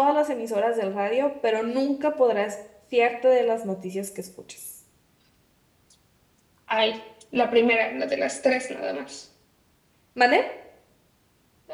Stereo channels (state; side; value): identical; both; correlation 1.00